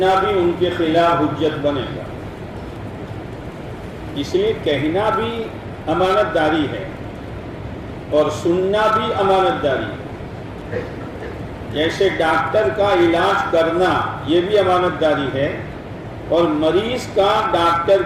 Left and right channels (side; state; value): both; identical; correlation 1.00